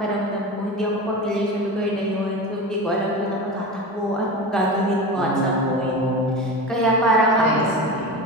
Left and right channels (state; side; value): normal; both; correlation 0.28